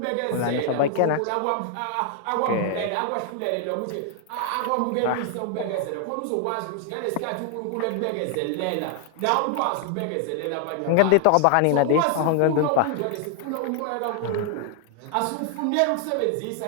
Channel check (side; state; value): both; different; correlation 0.00